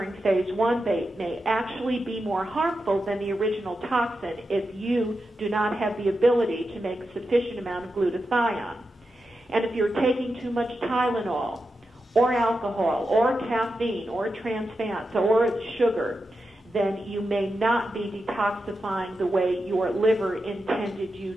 phase 1 may actually be more harmful than the original toxin if you do not have the ability to make a sufficient amount of glutathione. And if you're taking too much Tylenol or alcohol or caffeine or trans fats or sugar, then you may not be detoxifying the way your liver intended you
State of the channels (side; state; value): both; normal; correlation 0.89